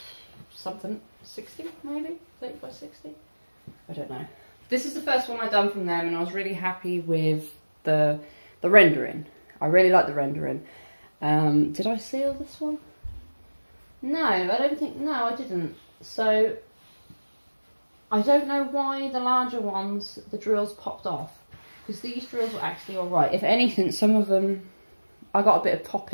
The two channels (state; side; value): inverted; both; correlation -1.00